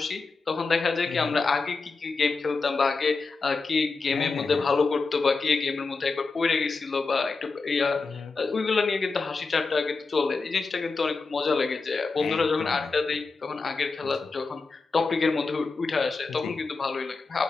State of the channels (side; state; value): right; quieter; 4.2 dB